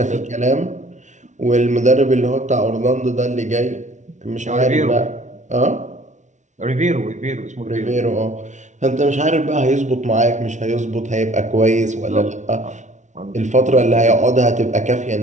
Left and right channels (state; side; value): late; left; 0.35 ms